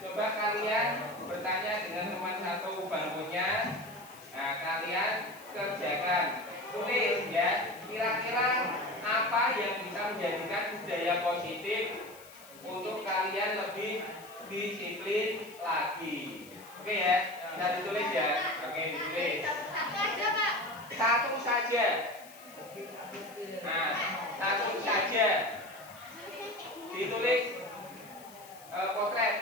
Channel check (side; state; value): left; noise; hiss, 20 dB below the sound